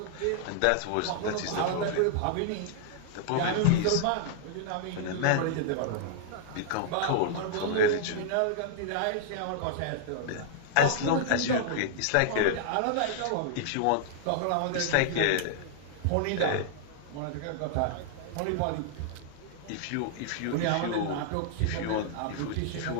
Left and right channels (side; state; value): both; different; correlation -0.01